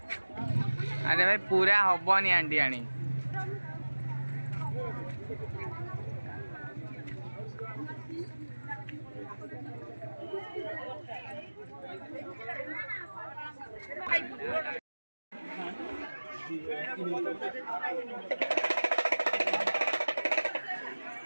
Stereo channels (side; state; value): both; inverted; correlation -1.00